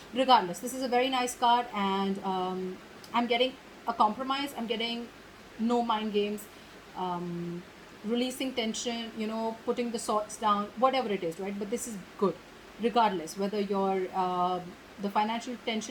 regardless, this is a very nice card, and I'm getting a compromise. I'm getting no mind games, um, releasing tension, putting the swords down, whatever it is, right? But this is good regardless whether the financial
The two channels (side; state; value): both; identical; correlation 1.00